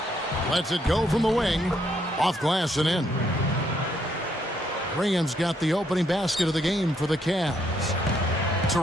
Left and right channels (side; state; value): both; normal; correlation 0.73